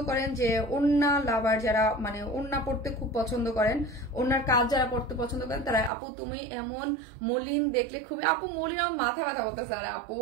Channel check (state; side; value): drops out; left; at 5.9 s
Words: করেন যে ওড়না লাভার, যারা মানে ওড়না পড়তে খুব পছন্দ করেন, ওড়নার কাজ যারা পড়তে পছন্দ করেন, তারা আপু তুমি এমন মলিন দেখলে খুবই, আপু মলিন আমার মাথা ব্যথা করতেছে। আর আপু